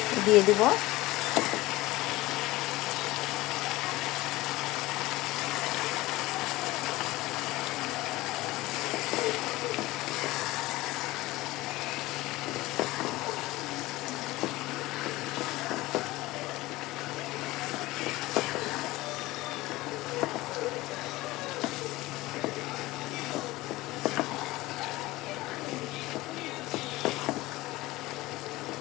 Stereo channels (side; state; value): right; quieter; 19.0 dB